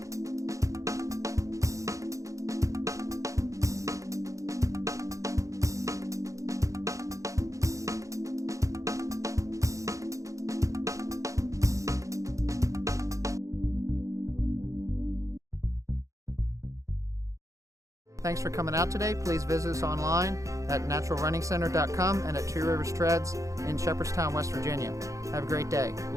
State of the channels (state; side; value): late; left; 0.15 ms